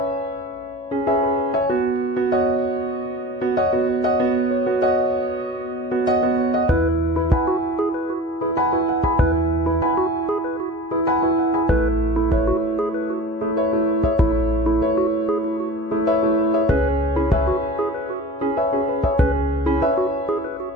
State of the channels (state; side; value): normal; both; correlation 0.37